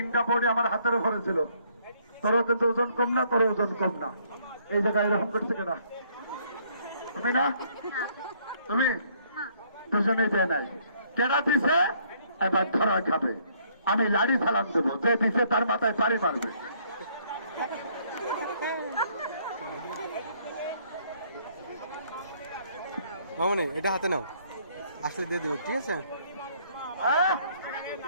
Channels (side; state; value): both; inverted; correlation -0.66